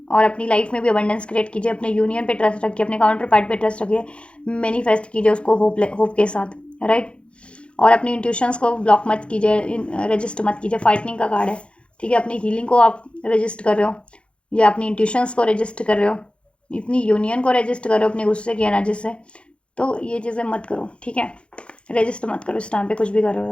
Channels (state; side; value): late; right; 0.058 ms